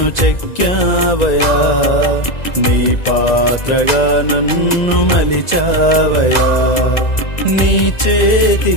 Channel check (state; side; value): late; right; 1.9 ms